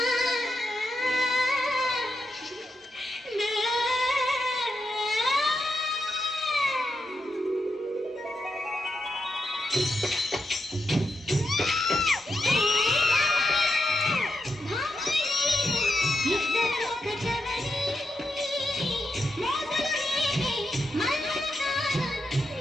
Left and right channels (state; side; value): normal; both; correlation 0.85